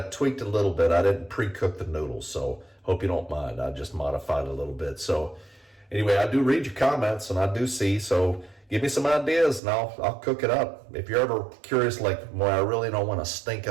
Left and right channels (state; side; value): drops out; left; at 9.6 s